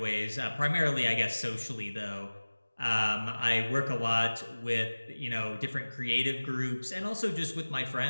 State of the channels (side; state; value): both; inverted; correlation -1.00